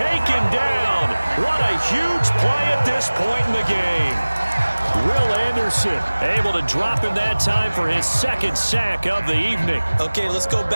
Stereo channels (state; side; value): inverted; both; correlation -1.00